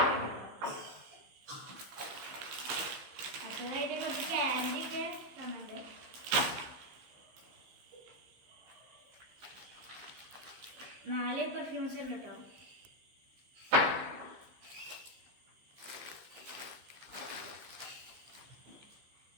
അടുത്തതായിട്ട് കുറച്ച് ക്യാൻഡി ഒക്കെ തന്നിട്ടുണ്ട്. 4 പെർഫ്യൂംസ് ഉണ്ട് കേട്ടോ.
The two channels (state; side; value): late; left; 15 ms